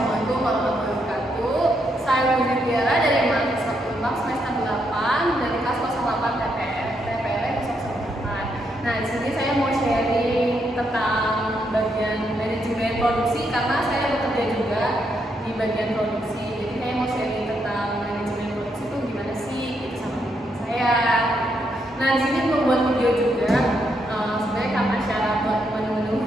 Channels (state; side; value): normal; both; correlation 0.78